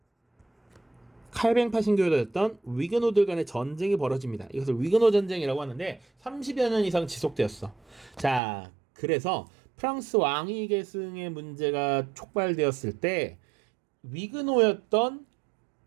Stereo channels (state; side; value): drops out; left; at 8.4 s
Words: 칼뱅파 신교였던 위그노들 간의 전쟁이 벌어집니다. 이것을 위그노 전쟁이라고 하는데 30여 년 이상 지속되었어. 자, 그래서 프랑스 왕위 계승의 문제가 촉발되었을 때 위그노였던